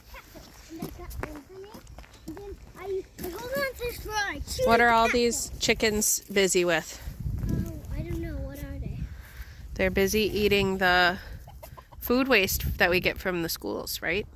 What are all these chickens busy with? Oh, I don't know. What are they? They're busy eating the food waste that we get from the schools, right?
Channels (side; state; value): both; identical; correlation 1.00